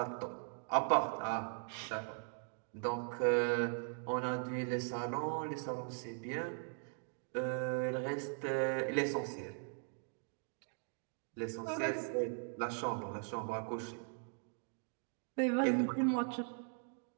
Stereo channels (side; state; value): left; silent; 51 dB below the other